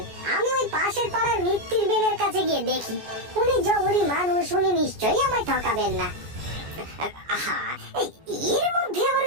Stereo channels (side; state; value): left; late; 14 ms